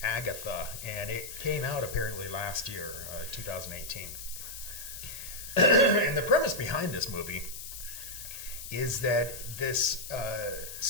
Agatha, and it came out apparently last year, 2018. And the premise behind this movie is that this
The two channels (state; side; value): noise; left; hiss, 10 dB below the sound